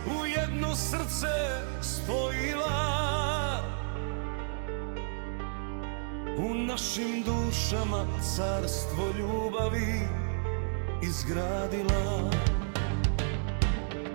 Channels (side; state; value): left; silent; digital silence